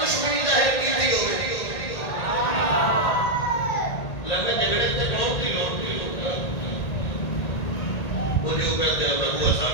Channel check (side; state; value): right; late; 1.8 ms